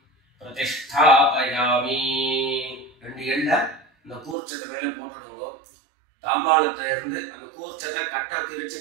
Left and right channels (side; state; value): left; drops out; at 4.4 s